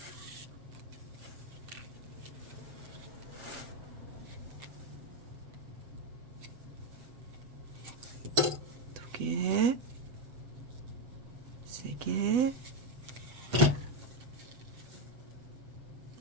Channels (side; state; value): left; late; 8.0 ms